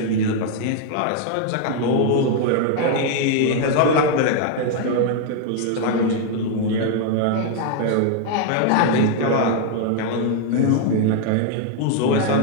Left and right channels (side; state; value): both; different; correlation 0.00